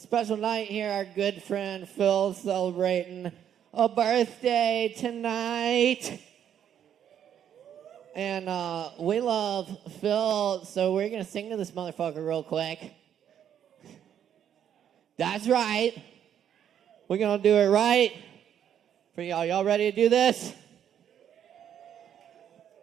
night here. Our good friend Phil celebrating a birthday tonight. And we love Phil, so we're going to sing to this motherfucker real quick. That's right. We're going to do it right for y'all. Y'all ready to do this?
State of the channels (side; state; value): left; quieter; 9.5 dB